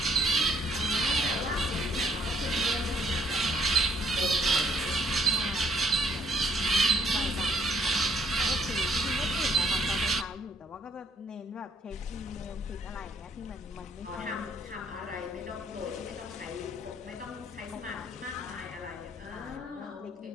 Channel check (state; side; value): normal; both; correlation 0.64